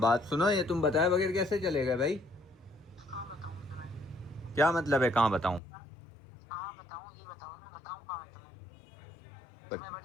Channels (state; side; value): drops out; right; at 5.6 s